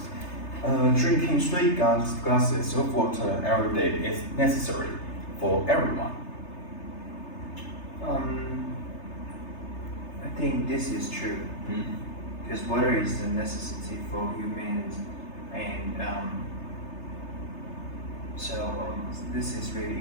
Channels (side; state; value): right; late; 3.3 ms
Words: Drinking 3 glasses of water every day is necessary for everyone. I think this is true because water is a necessity for humans, and this is really